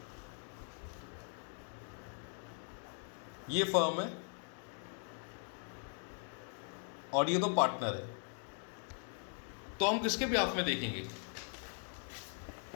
ये फर्म है और ये तो पार्टनर है, तो हम किसके बिहाफ में देखेंगे?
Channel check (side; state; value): right; silent; 51 dB below the other